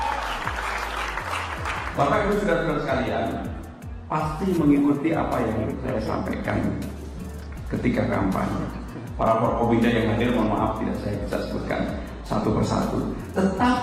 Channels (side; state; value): both; identical; correlation 1.00